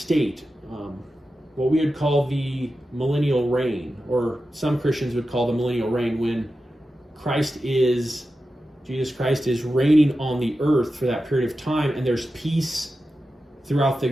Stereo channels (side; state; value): both; normal; correlation 0.92